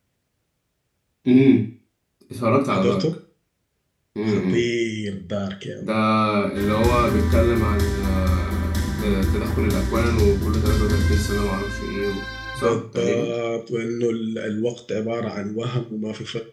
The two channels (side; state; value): both; identical; correlation 1.00